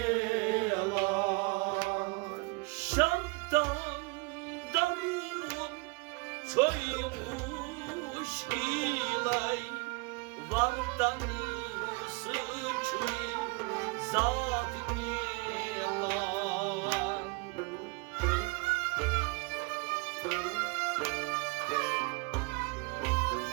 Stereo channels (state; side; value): quieter; left; 28.7 dB